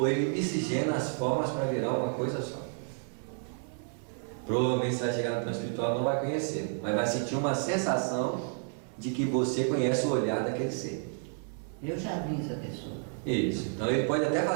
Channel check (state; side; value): silent; left; 57 dB below the other